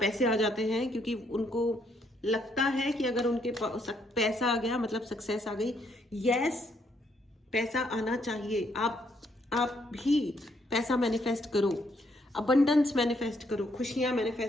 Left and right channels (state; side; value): normal; both; correlation 0.72